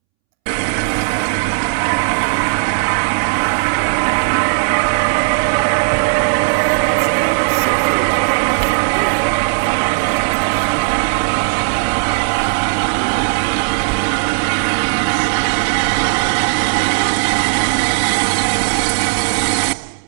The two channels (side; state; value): left; silent; 69 dB below the other